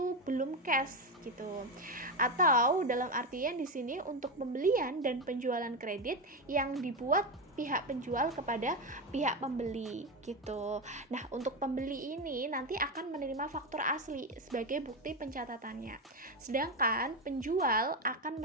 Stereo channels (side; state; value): both; normal; correlation 0.13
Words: belum cash gitu. Atau dalam artian di sini untuk pembelian dan penjualan kredit yang dibuat pihak penjual kepada pihak pembeli gitu. Nah, untuk pembeli ini nanti akan menerima faktur asli sebagai bukti pencatatannya. Sedangkan penjual akan